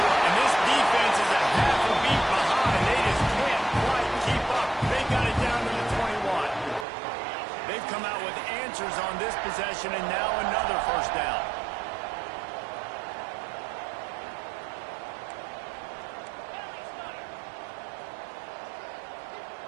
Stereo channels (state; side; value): drops out; left; at 6.9 s